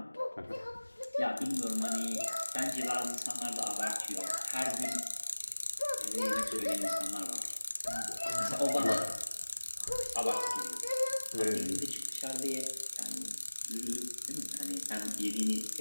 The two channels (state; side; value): inverted; both; correlation -1.00